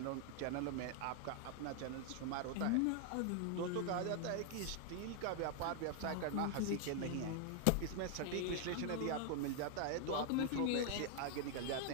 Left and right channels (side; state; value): both; different; correlation 0.00